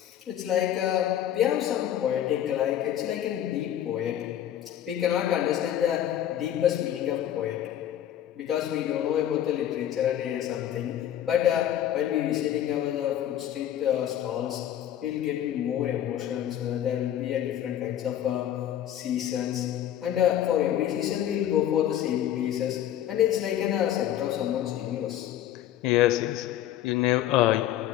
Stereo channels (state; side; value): quieter; right; 11.2 dB